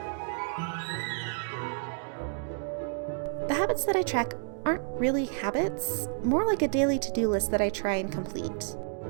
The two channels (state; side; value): silent; left; 58 dB below the other